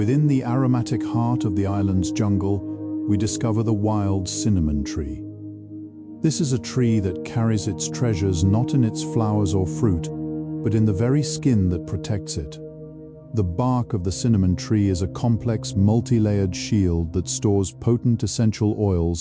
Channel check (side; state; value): both; identical; correlation 1.00